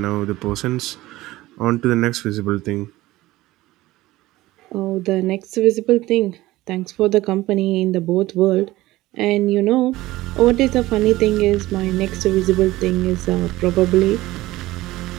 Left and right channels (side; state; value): left; quieter; 17.7 dB